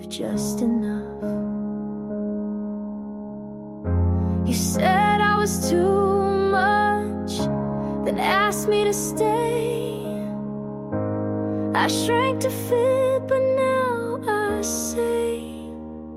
just enough. You said I was too much, then asked me to stay. I shrank to fit, but now I say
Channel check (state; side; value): identical; both; correlation 1.00